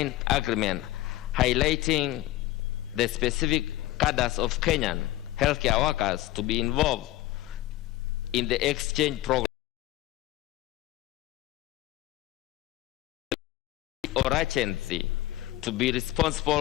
agreement, highlighting the specific cadres of Kenyan healthcare workers to be involved in the exchange program, or agency to be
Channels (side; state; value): right; quieter; 16.4 dB